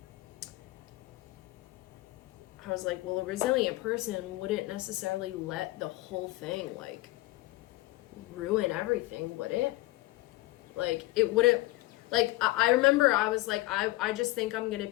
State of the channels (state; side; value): quieter; right; 19.3 dB